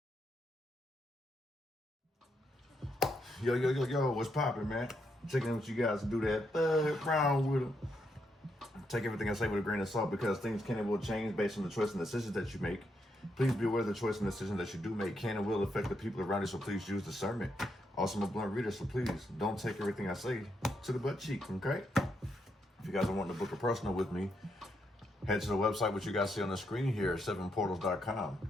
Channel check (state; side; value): normal; both; correlation 0.79